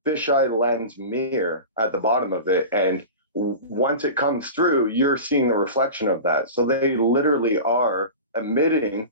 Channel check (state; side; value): inverted; both; correlation -0.31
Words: mirror at the bottom of it, and once it comes through, you're seeing the reflection of that. So they literally are omitting